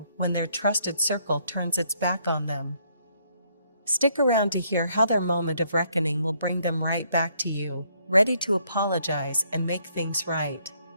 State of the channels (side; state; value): both; inverted; correlation -0.69